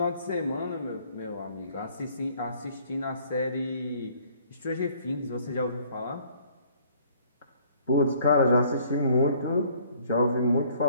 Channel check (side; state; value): both; inverted; correlation -0.59